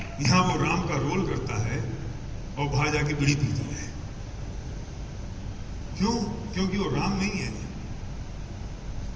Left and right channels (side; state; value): both; identical; correlation 1.00